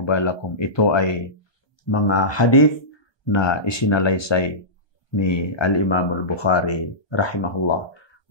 balakum. Ito ay mga hadith na isinalaysay ni Al-Imam Al-Bukhari rahimahullah.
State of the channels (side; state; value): right; late; 1.2 ms